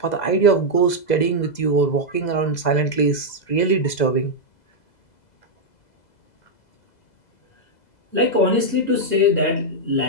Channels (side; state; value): right; late; 2.0 ms